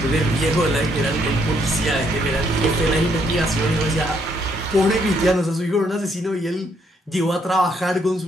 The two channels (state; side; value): normal; both; correlation 0.71